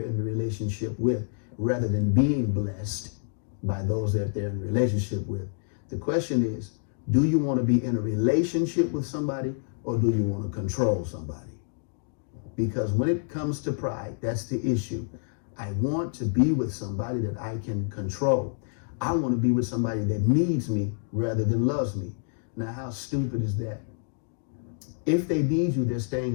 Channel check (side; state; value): right; silent; digital silence